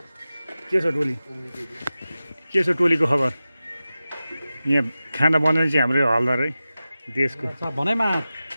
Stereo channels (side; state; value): both; inverted; correlation -0.95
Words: छ टोली के छ टोलीको खबर यहाँ खाना बनाउने चाहिँ हाम्रो हलदार है देशको भनाइमा